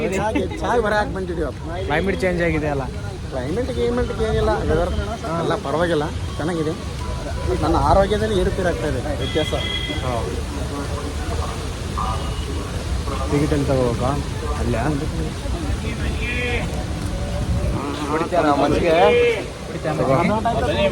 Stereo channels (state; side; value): identical; both; correlation 1.00